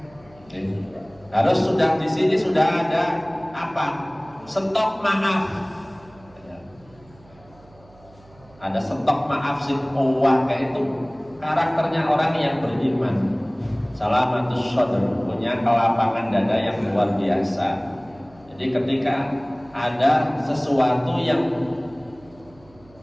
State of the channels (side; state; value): right; noise; hum, 26 dB below the sound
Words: Harus sudah di sini sudah ada apa? Stok maaf. Ada stok maaf sih. Kayak itu karakternya orang yang beriman. Salamatus sadr, punya kelapangan dada yang luar biasa. Jadi ketika ada sesuatu yang